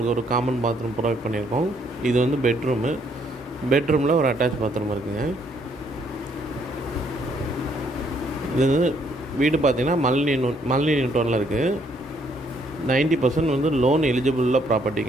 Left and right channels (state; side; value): normal; both; correlation 0.68